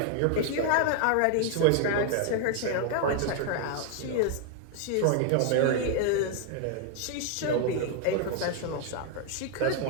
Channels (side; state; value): both; different; correlation 0.00